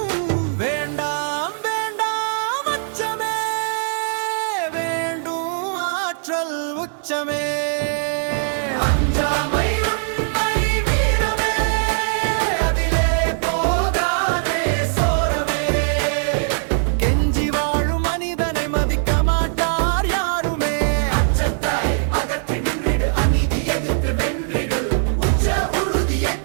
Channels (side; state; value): left; silent; digital silence